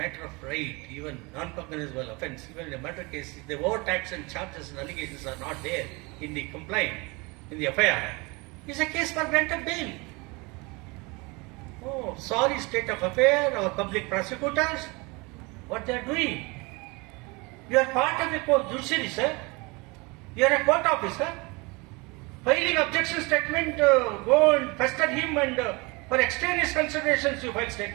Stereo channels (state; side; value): quieter; left; 26.8 dB